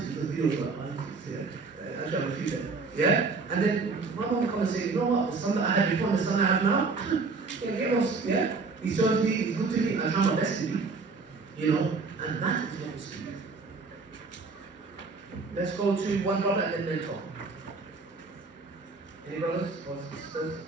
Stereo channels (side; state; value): left; quieter; 4.3 dB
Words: the videos about ISIS, yeah? Actually, I refuse that. Yeah? And then my mom would come and say, you know what, the son that I had before and the son I have now, get lost, yeah? He serves me, he's good to me, I try my best to be. And that is what we speak. Let's go to one brother and then mentor. Any brothers or sisters?